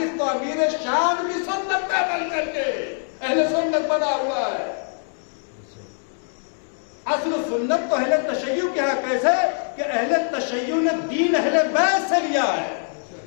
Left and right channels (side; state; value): right; silent; 63 dB below the other